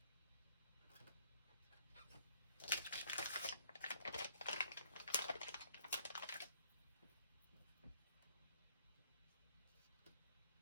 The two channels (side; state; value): both; inverted; correlation -0.63